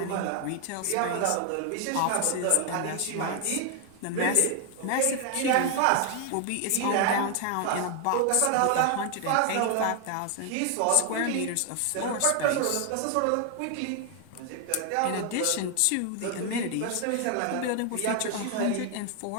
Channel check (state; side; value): different; both; correlation 0.00